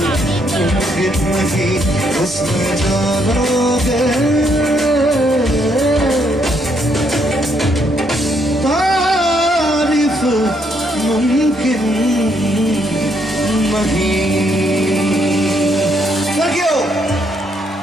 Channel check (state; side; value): normal; both; correlation 0.73